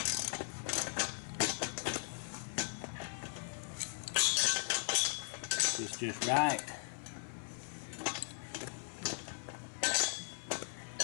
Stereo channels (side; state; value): right; silent; 52 dB below the other